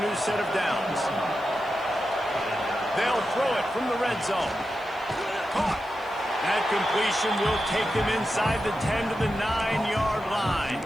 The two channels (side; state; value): right; noise; hiss, 27 dB below the sound